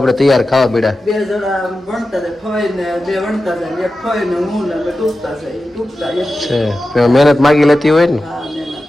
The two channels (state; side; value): normal; both; correlation 0.93